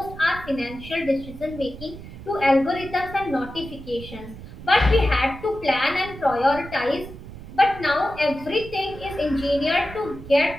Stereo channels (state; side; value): noise; right; rumble, 14 dB below the sound